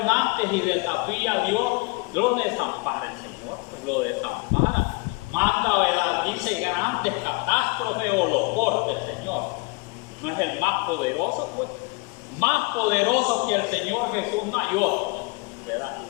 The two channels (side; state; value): right; quieter; 28.7 dB